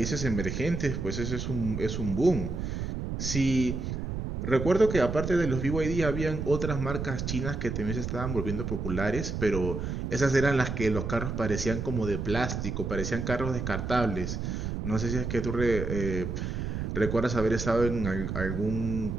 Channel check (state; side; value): noise; right; rumble, 4 dB below the sound